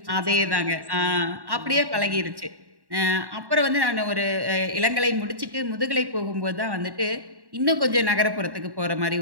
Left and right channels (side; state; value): left; late; 1.1 ms